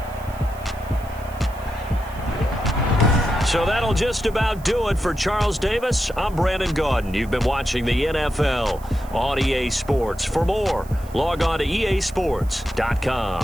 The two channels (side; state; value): right; noise; hiss, 23 dB below the sound